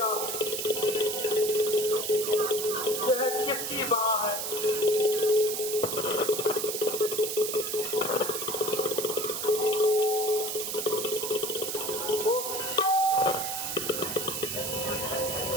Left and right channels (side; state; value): right; noise; hiss, 3 dB below the sound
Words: यह किसकी वहां है।